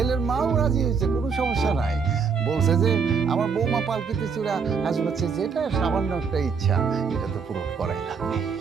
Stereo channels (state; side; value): quieter; left; 5.8 dB